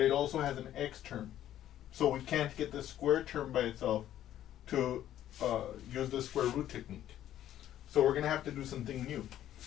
it also has an x term. So we can't get the square term by itself to use the square root technique. So we're going to have to do something new.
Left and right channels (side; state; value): right; quieter; 12.0 dB